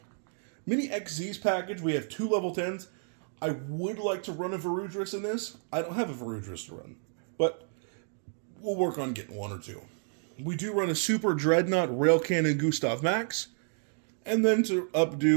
XZ's package, we have 2 level 10s. I would like to run a Varudris in this. I don't have a Varudris to run, but we'll work on getting 1 or 2. We do run a Super Dreadnought Rail Cannon Gustav Max, and then to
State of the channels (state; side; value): silent; left; 57 dB below the other